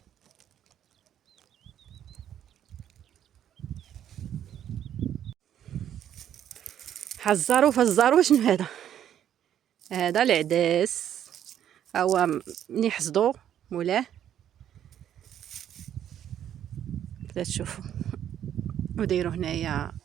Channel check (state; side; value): quieter; left; 10.3 dB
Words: حزارو فزارو. شنو هذا؟ هذا العدس، هو ملي حصدوه مولاه كذا تشوفوا، وديروا هنايا